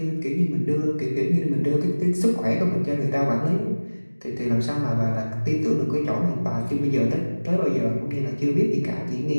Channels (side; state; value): both; inverted; correlation -1.00